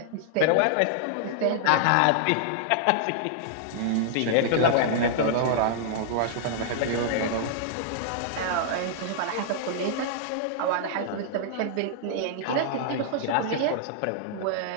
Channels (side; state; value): both; different; correlation -0.01